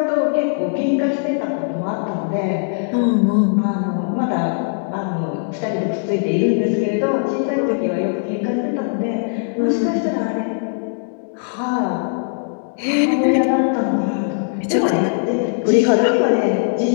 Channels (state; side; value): silent; right; 66 dB below the other